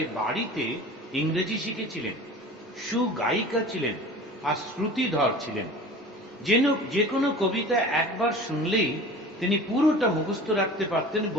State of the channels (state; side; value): normal; both; correlation 0.39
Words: বাড়িতে ইংরেজি শিখেছিলেন, সুগায়িকা ছিলেন আর শ্রুতিধর ছিলেন। যে কোনো কবিতা একবার শুনলেই তিনি পুরোটা মুখস্থ রাখতে পারতেন,